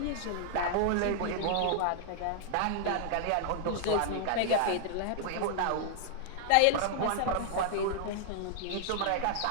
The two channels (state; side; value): different; both; correlation -0.01